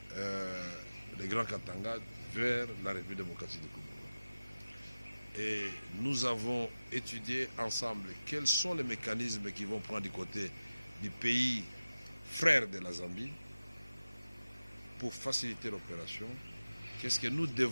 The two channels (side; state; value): both; inverted; correlation -0.96